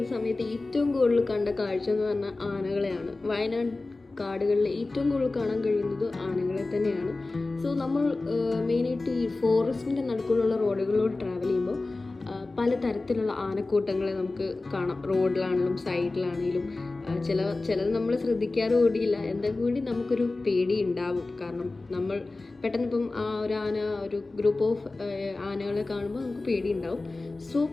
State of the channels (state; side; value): quieter; right; 3.3 dB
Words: സമയത്ത് ഏറ്റവും കൂടുതൽ കണ്ട കാഴ്ച എന്ന് പറഞ്ഞാൽ ആനകളെയാണ്. വയനാട് കാടുകളിൽ ഏറ്റവും കൂടുതൽ കാണാൻ കഴിയുന്നത് ആനകളെ തന്നെയാണ്. സോ നമ്മൾ മെയിനായിട്ട് ഈ ഫോറസ്റ്റിൻ്റെ നടുക്കുള്ള റോഡുകളിലൂടെ ട്രാവൽ ചെയ്യുമ്പോൾ പലതരത്തിലുള്ള ആനക്കൂട്ടങ്ങളെ നമുക്ക് കാണാം. റോഡിലാണെങ്കിലും സൈഡിലാണെങ്കിലും ചിലത് നമ്മൾ ശ്രദ്ധിക്കാറ് കൂടിയില്ല, എന്നാൽ കൂടി നമുക്കൊരു പേടി ഉണ്ടാവും. കാരണം നമ്മൾ പെട്ടെന്ന് ഇപ്പം ഒരു ഗ്രൂപ്പ് ഓഫ് ആനകളെ കാണുമ്പോൾ നമുക്ക് പേടി ഉണ്ടാവും. സോ